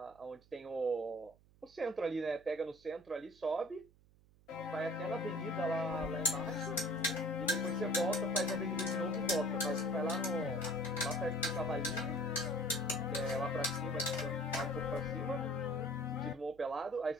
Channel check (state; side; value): noise; right; hum, 28 dB below the sound